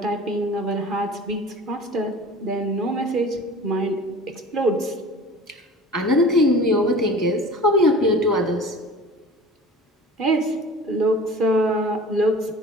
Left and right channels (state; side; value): normal; both; correlation 0.41